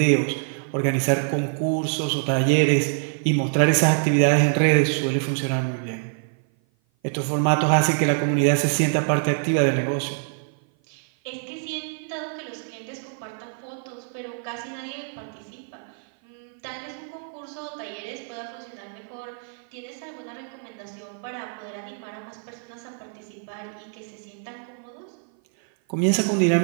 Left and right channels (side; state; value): left; silent; 55 dB below the other